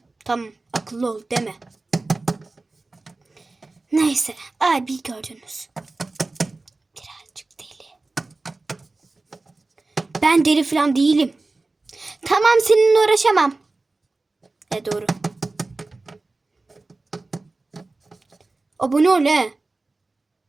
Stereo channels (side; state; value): left; quieter; 3.3 dB